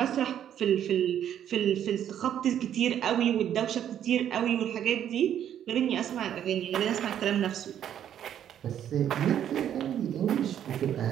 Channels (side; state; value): left; quieter; 10.1 dB